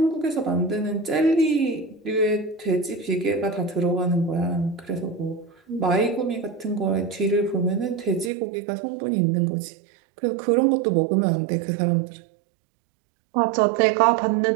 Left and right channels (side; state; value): left; drops out; at 8.3 s